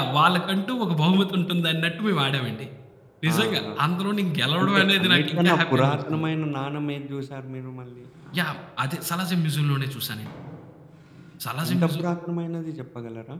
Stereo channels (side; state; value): both; identical; correlation 1.00